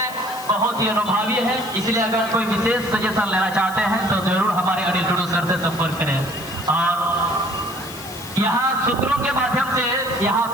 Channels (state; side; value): noise; left; hiss, 16 dB below the sound